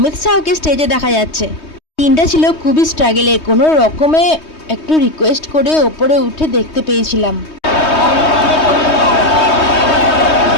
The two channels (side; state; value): right; late; 3.2 ms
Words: শাহকে স্টেজে দেখা যাচ্ছে। দিনটা ছিল খুবই স্ট্রাগলে, কোনো রকমে একটু রিকোয়েস্ট করে ওপরে উঠে দেখতে পেয়েছিলাম।